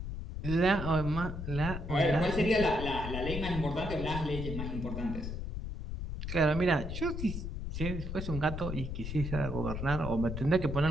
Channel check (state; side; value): noise; left; rumble, 5 dB below the sound